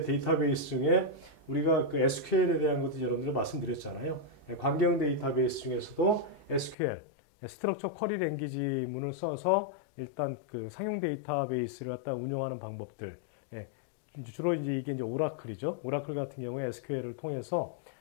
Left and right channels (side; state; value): right; drops out; at 6.8 s